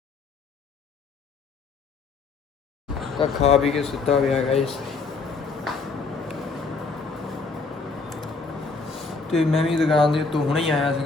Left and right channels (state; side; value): quieter; right; 4.2 dB